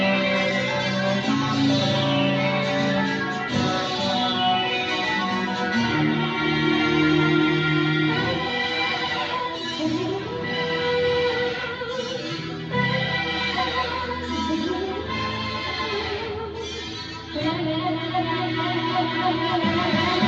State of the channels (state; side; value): identical; both; correlation 1.00